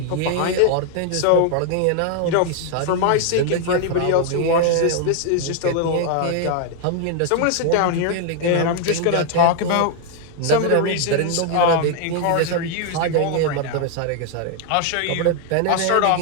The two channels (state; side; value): different; both; correlation 0.00